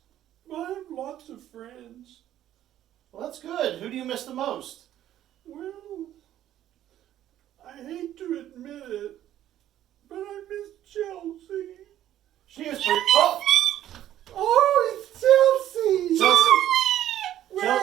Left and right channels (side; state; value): left; quieter; 12.2 dB